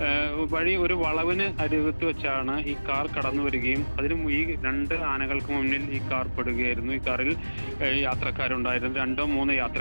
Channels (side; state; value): both; inverted; correlation -1.00